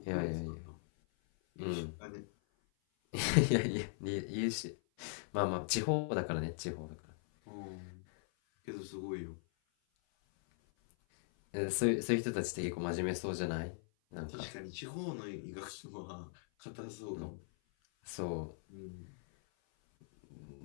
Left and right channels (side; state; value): right; silent; 51 dB below the other